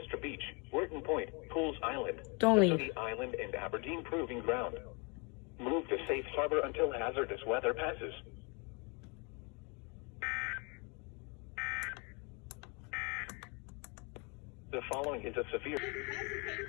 Beach, Wharton Point, Pools Island, Don't leave. City Island, and Aberdeen Proving Ground. Move to safe harbor until hazardous weather passes. The following is a severe...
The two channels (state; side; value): quieter; right; 32.1 dB